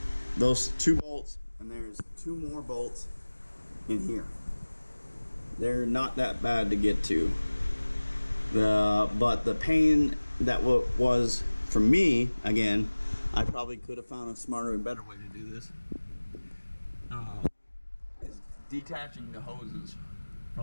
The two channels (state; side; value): inverted; both; correlation -1.00